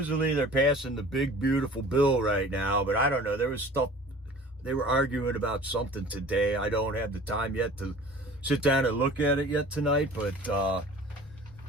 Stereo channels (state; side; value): normal; both; correlation 0.44